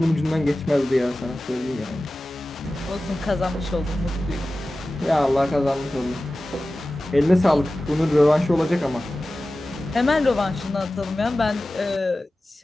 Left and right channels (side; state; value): both; normal; correlation 0.96